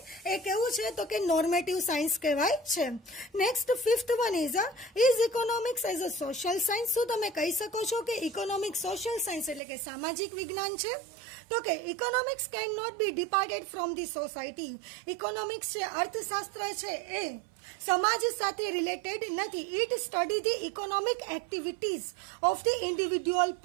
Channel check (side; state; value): left; drops out; at 9.6 s